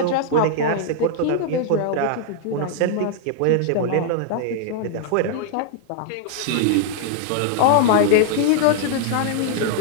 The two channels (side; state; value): both; different; correlation -0.01